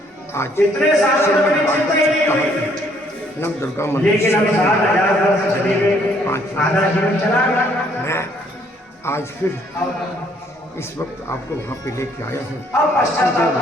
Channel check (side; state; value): both; normal; correlation 0.65